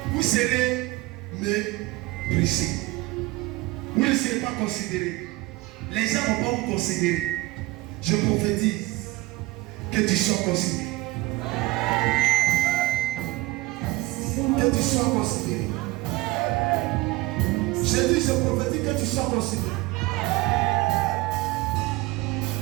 Vous serez méprisé. Vous ne serez pas considéré. Les gens ne vont pas vous considérer. Je prophétise que tu sois considéré. Que tu sois considéré. Je dis, je prophétise que tu sois considéré.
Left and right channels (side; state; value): left; quieter; 20.1 dB